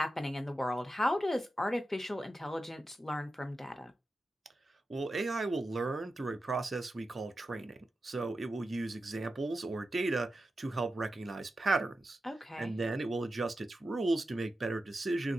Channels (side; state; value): both; normal; correlation 0.91